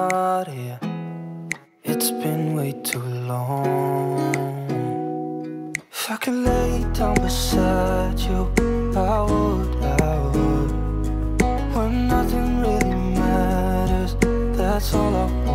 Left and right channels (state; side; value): identical; both; correlation 1.00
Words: here. It's been way too long. If I could lay down beside you, I would. When nothing really matters, that's all I